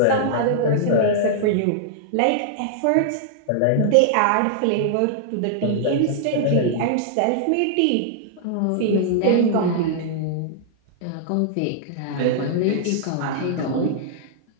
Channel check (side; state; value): both; different; correlation -0.01